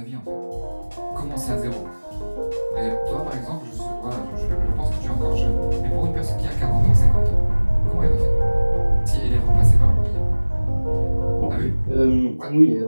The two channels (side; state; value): both; inverted; correlation -1.00